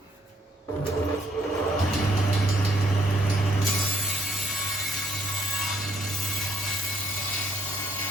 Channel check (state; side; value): normal; both; correlation 0.69